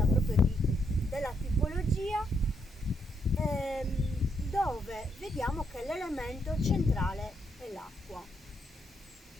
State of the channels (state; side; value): normal; both; correlation 0.77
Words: proprio della tipologia, dove vediamo che l'elemento centrale è l'acqua.